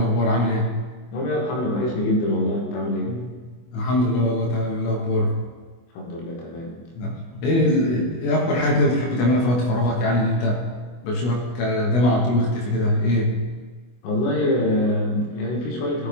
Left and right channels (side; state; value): right; late; 24 ms